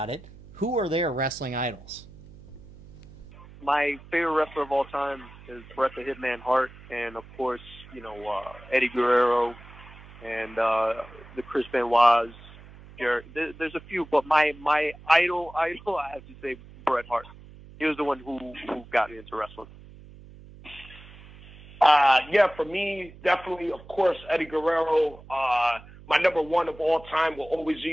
it. Who are their wrestling idols? My favorite wrestler of all time is Bret the Hitman Hart, and of course, Eddie Guerrero, and the Chris Benoit's. There's a few, but my idol, I have to say Bret Hart. He was the one who got me into wrestling. For me, definitely, of course, Eddie Guerrero. My number one of all time will always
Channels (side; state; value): right; noise; hum, 20 dB below the sound